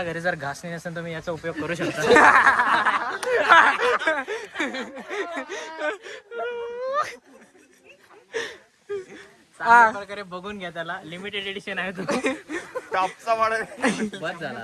घरी जर घासणी नसेल तुम्ही याचा उपयोग करू शकता. चांगल्या प्रकारे बघून घ्या, त्याला लिमिटेड एडिशन आहे तो. टॉपचा वाढ. बस झाला,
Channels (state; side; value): identical; both; correlation 1.00